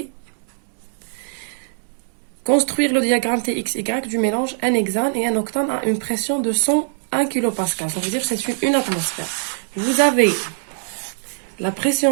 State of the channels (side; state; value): left; silent; 65 dB below the other